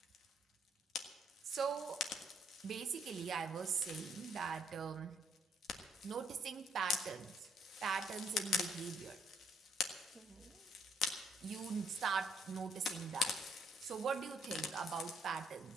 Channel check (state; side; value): normal; both; correlation 0.70